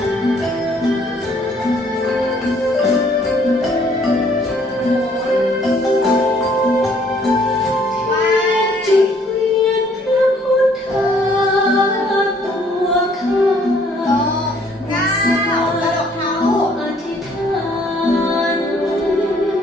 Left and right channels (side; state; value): both; normal; correlation 0.62